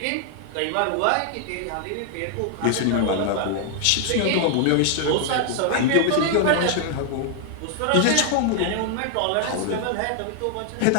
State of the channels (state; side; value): different; both; correlation 0.00